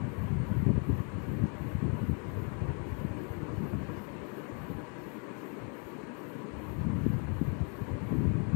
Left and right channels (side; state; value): right; quieter; 38.5 dB